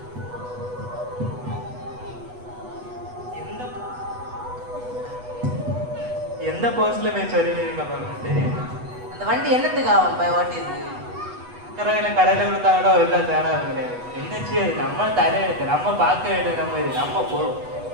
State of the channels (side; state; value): left; late; 8.1 ms